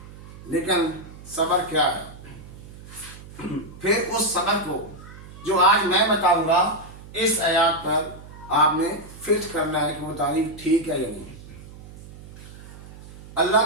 لیکن صبر کیا ہے؟ پھر اس صبر کو جو آج میں بتاؤں گا، اس آیات پر آپ نے فٹ کرنا ہے کہ وہ تعریف ٹھیک ہے یا نہیں۔ اللہ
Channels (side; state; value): right; noise; hum, 17 dB below the sound